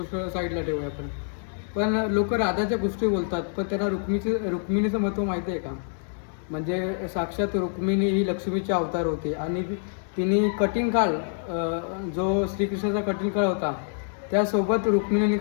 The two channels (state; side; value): silent; right; digital silence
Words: साईडला ठेवूया आपण. पण लोक राधाच्या गोष्टी बोलतात, पण त्यांना रुक्मिणीचं महत्त्व माहिती आहे का? म्हणजे साक्षात रुक्मिणी ही लक्ष्मीचे अवतार होते आणि तिने कठीण काळ, जो श्रीकृष्णाचा कठीण काळ होता त्यासोबत रुक्मिणीने